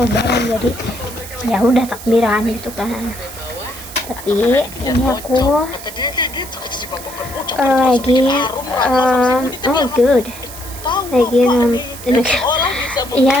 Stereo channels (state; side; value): noise; right; hiss, 14 dB below the sound